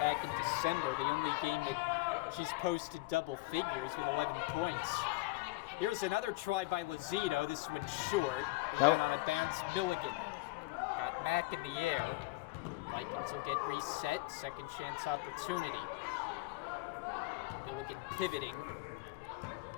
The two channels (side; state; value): right; quieter; 21.4 dB